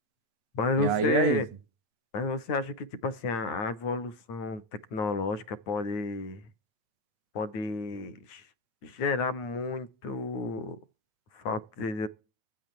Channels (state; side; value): late; right; 8.8 ms